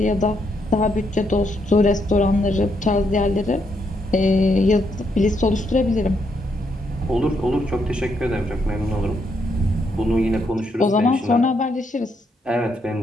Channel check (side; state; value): both; normal; correlation 0.77